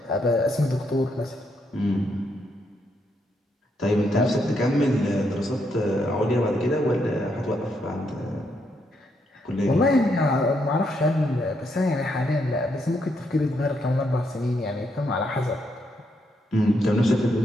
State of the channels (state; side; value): normal; both; correlation 0.77